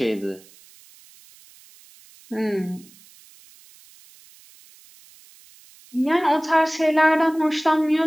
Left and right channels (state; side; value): noise; right; hiss, 26 dB below the sound